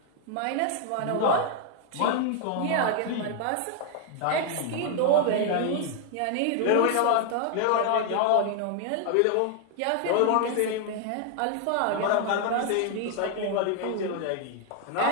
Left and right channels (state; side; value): different; both; correlation 0.00